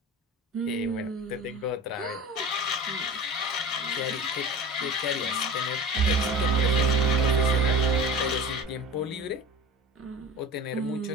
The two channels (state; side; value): normal; both; correlation 0.34